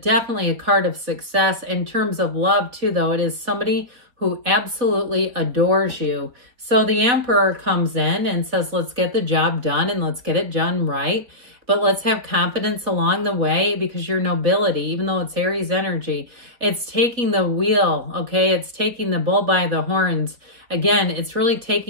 a card of success. In terms of love too, though, it is somebody who absolutely adores you. So the Emperor comes in and says, let's get the job done and let's get it done right. But let's have confidence along the way, because your nobility, even though it's Aries energy, it's taking the wheel, okay? It's taking the bull by the horns. Again, it's really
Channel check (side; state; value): left; late; 4.2 ms